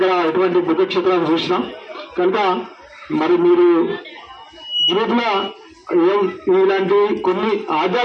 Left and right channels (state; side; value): identical; both; correlation 1.00